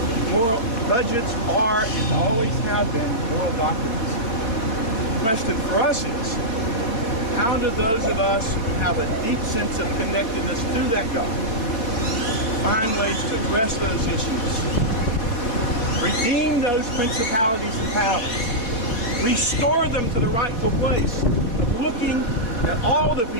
Moral budgets are and always have been moral documents. The question for us is, how do those of us who have a deep sense of connectedness to that God find ways to address those issues, redeem those principalities and powers, restore them to the rightful place of looking at all the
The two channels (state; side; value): late; right; 4.2 ms